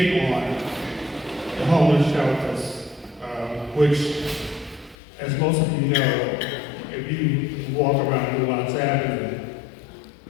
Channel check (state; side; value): drops out; right; at 5.0 s